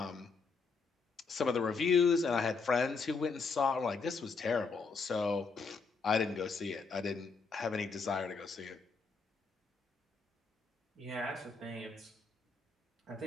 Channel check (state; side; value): quieter; right; 4.7 dB